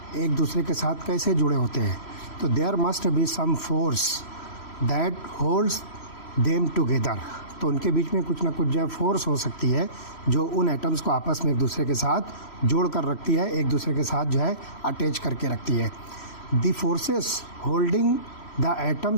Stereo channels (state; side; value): late; right; 3.1 ms